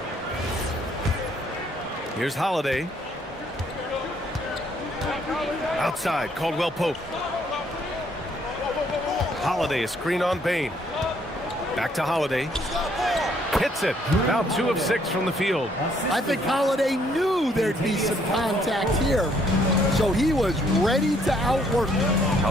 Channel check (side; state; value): both; normal; correlation 0.67